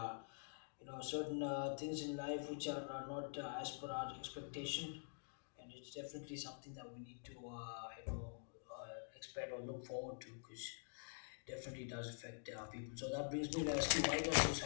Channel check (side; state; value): right; silent; digital silence